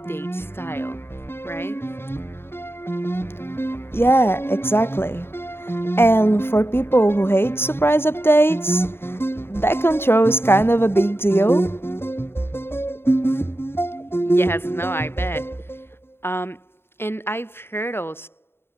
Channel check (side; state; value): right; late; 0.11 ms